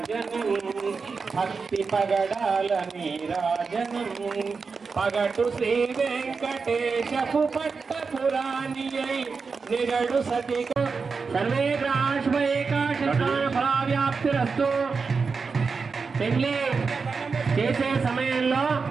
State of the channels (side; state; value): left; quieter; 4.9 dB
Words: భక్తి పగడాల నీరాజనం పగటు శ్రీ వెంకటేశపు పట్టపురాణి నిగడు సతిక సర్వే ఫలావ్యాప్తిరస్తు. పెళ్లి చేసే సమయంలో